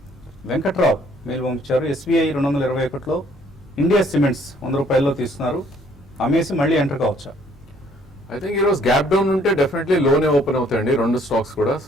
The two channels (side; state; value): both; normal; correlation 0.63